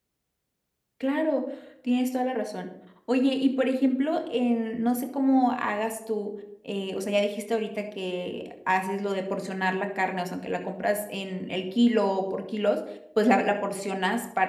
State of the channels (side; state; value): both; identical; correlation 1.00